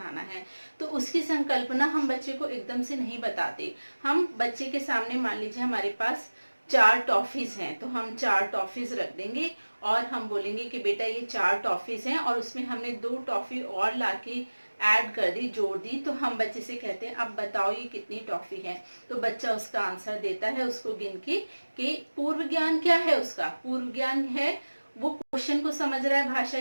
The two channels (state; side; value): inverted; both; correlation -1.00